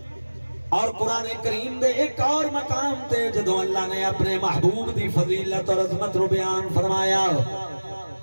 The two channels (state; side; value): inverted; both; correlation -1.00